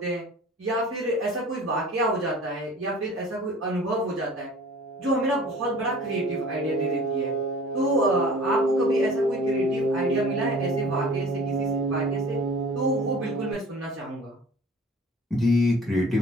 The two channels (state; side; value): normal; both; correlation 0.45